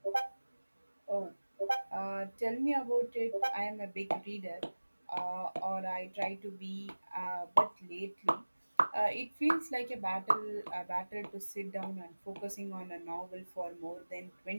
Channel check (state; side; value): inverted; both; correlation -1.00